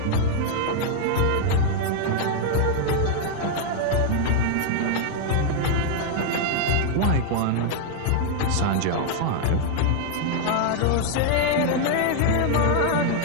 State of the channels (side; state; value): both; different; correlation 0.00